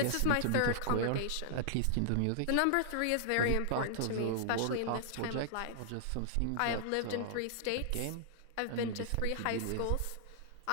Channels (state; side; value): different; both; correlation -0.01